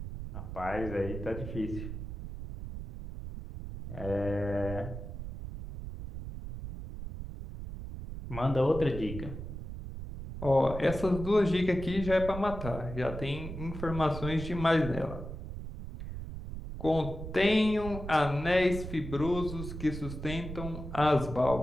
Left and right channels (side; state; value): right; noise; rumble, 8 dB below the sound